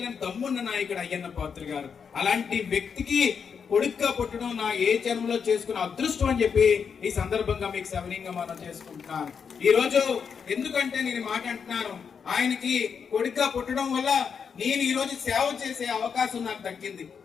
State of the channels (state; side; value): quieter; right; 6.5 dB